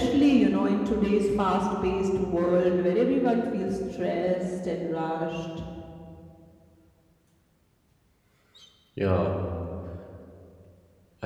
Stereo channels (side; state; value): both; identical; correlation 1.00